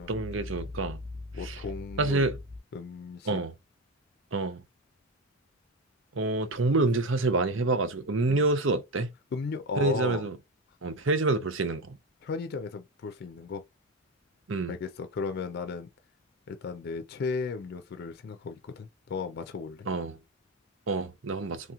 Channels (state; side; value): normal; both; correlation 0.18